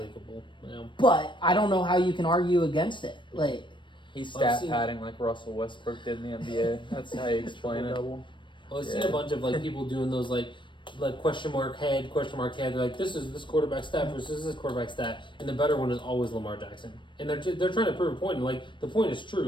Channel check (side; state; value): right; late; 0.23 ms